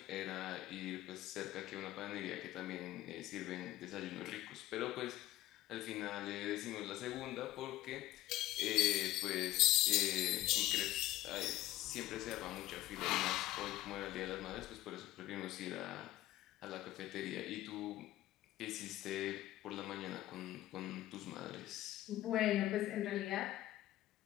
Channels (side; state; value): right; quieter; 15.4 dB